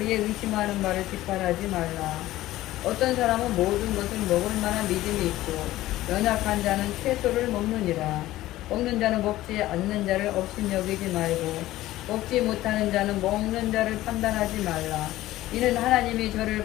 의심하는 바를 뒷바라지 말라. 어떤 사람은 모든 것을 먹을 만한 믿음이 있고 연약한 자는 채소를 먹느니라. 먹는 자는 먹지 않는 자를 업신여기지 말고 먹지 못하는 자는 먹는 자를 판단하지 말라. 이는 하나님이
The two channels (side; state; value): right; quieter; 15.9 dB